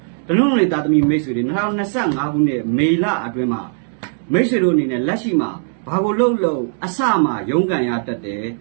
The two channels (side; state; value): left; silent; digital silence